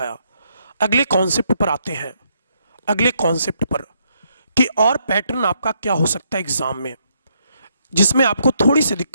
अगले कॉन्सेप्ट पर आते हैं, अगले कॉन्सेप्ट पर कि और पैटर्न आपका क्या हो सकता है एग्जाम में जिसमें आपको थोड़ी सी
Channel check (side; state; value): both; inverted; correlation -0.74